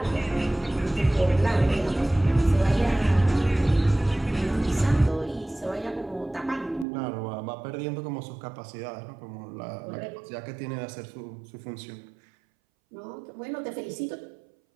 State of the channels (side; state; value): left; drops out; at 6.9 s